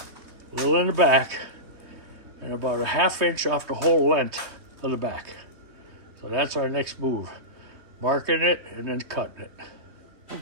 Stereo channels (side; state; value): left; late; 3.2 ms